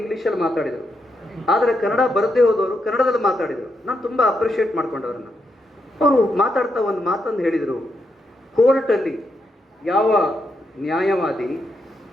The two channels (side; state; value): both; normal; correlation 0.82